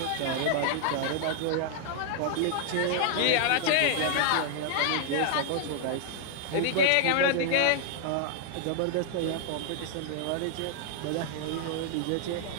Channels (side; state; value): both; different; correlation -0.01